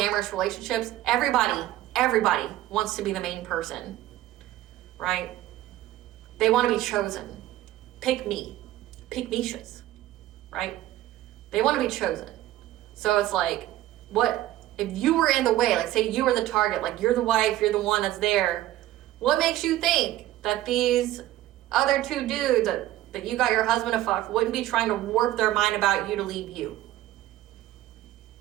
relationships. Everybody wants to be the main person, right? They want to be chosen. Pick me. Pick Mishas, right? They want to be chosen. So it's like, what if you were in the way? Like, say you were the target, like, you're the wife, you're the one that's there. What makes you think that these other two dudes that you got your husband to fuck wouldn't be trying to warp their mind about you to leave you?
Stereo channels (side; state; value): left; quieter; 14.6 dB